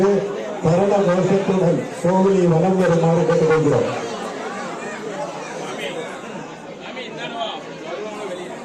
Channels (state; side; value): identical; both; correlation 1.00